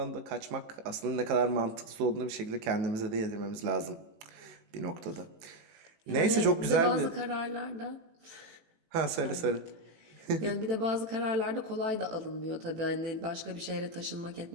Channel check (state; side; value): late; left; 18 ms